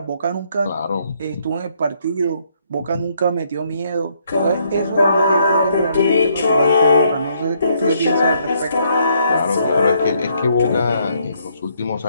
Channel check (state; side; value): inverted; both; correlation -0.71